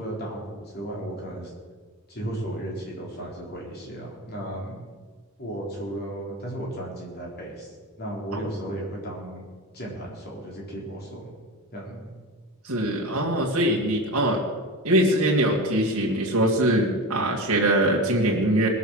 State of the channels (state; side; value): normal; both; correlation 0.25